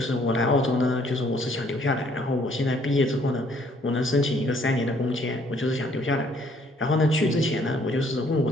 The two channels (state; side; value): normal; both; correlation 0.63